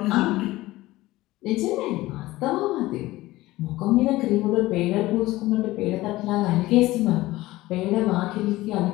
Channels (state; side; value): quieter; right; 17.9 dB